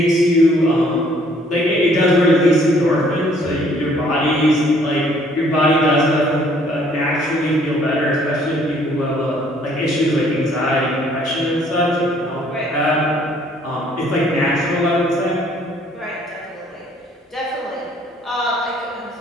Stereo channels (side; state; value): both; normal; correlation 0.61